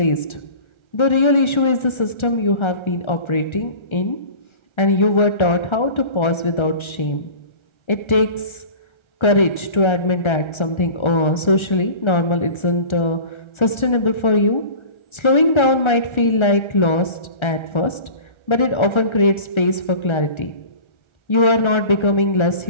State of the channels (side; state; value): right; late; 1.3 ms